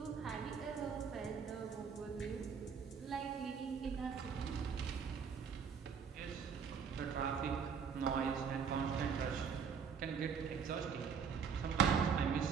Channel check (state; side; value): quieter; left; 6.5 dB